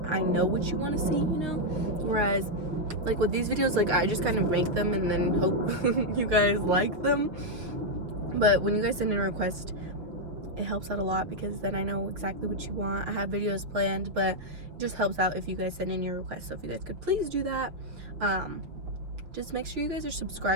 I know what you want to see, you know? Whereas like with these videos, like I just kind of make them and then hope you guys like them. But when you guys send in a request, it helps out a lot, because then I know exactly what you want. I have videos planned, but it just helps out if you guys send in your request. So if you guys could please do that. Just make sure you guys are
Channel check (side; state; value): left; late; 6.1 ms